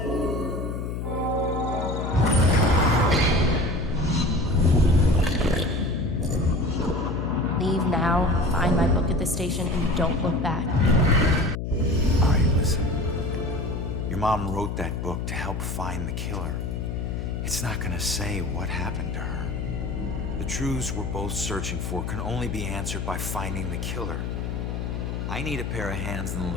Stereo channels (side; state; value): left; noise; hum, 3 dB below the sound